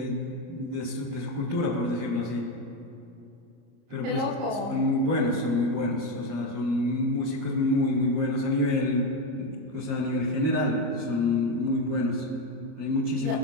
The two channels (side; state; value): left; late; 34 ms